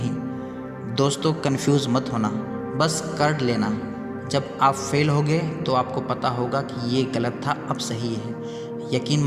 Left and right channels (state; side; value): identical; both; correlation 1.00